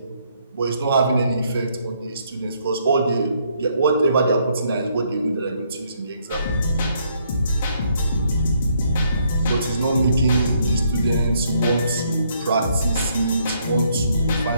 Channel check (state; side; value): inverted; both; correlation -0.71